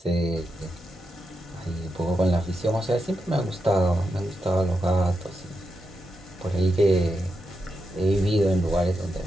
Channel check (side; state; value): both; normal; correlation 0.86